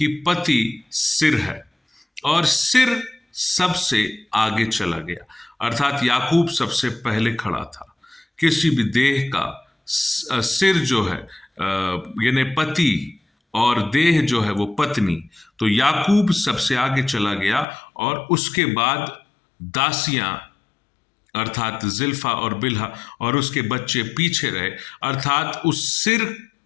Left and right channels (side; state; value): right; drops out; at 17.7 s